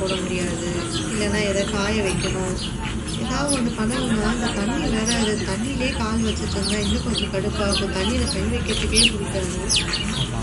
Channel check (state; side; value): identical; both; correlation 1.00